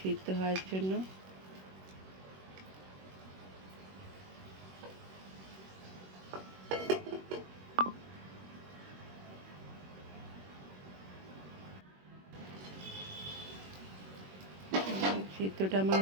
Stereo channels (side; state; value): left; late; 21 ms